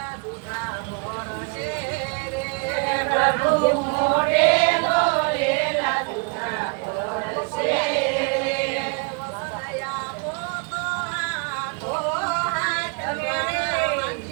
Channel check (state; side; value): quieter; left; 35.2 dB